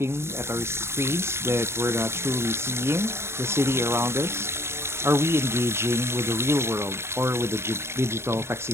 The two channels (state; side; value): late; left; 0.12 ms